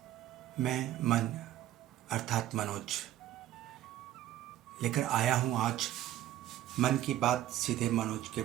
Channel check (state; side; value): quieter; left; 13.0 dB